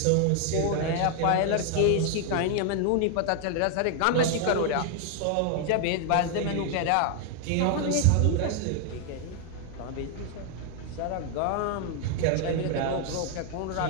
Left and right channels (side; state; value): both; different; correlation 0.00